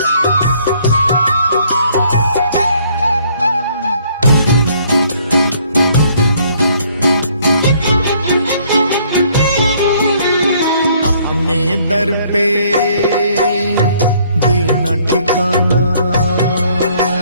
अपने दर पे देना ठिकाना।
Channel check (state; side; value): inverted; both; correlation -0.63